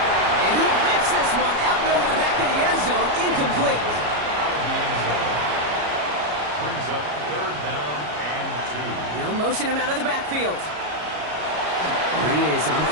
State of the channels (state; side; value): late; left; 33 ms